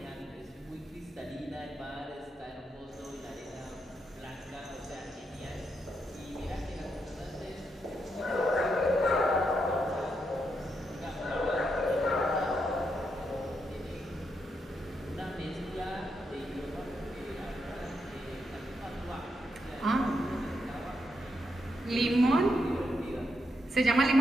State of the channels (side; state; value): both; normal; correlation 0.81